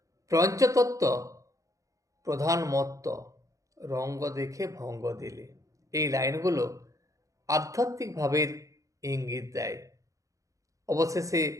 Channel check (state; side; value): late; left; 0.16 ms